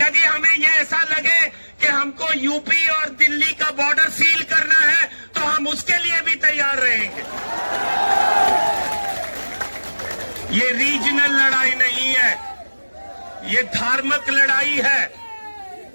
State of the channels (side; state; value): both; inverted; correlation -1.00